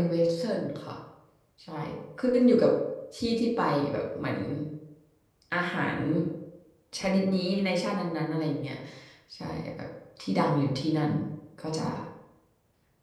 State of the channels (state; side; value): identical; both; correlation 1.00